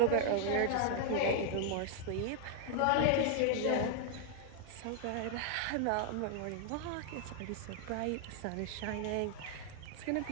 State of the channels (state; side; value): different; both; correlation 0.00